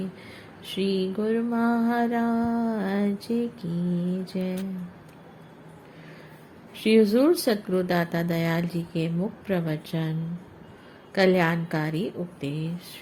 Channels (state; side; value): identical; both; correlation 1.00